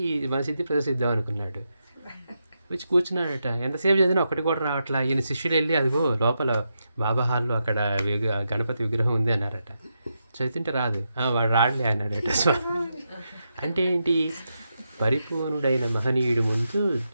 మన సిద్ధి ప్రదర్శిద్దాం అనుకున్నాడు. వచ్చి కూర్చున్నాడట. ఎంతసేపు చదివినా ఒకటి కూడా రావట్లా. ఈయన శిష్యులు వెళ్ళి అదిగో లోపల బాబా హాల్లో అక్కడ గణపతి విగ్రహం ఉంది అన్నారట. చదువుతుంటే రాదు. వాడు రాడలే అన్నాడట స్వామి. అంటే ఏంటి, పరిపూర్ణుడైన మహనీయుడి ముందు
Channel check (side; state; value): both; inverted; correlation -0.85